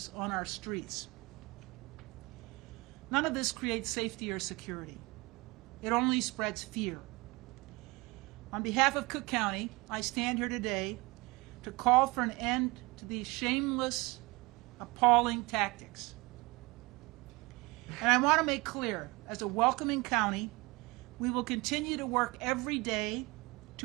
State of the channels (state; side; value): quieter; left; 24.6 dB